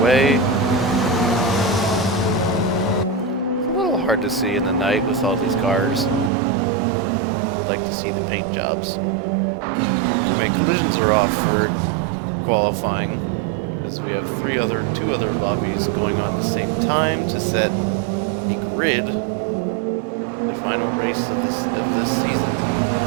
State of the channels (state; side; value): drops out; left; at 6.3 s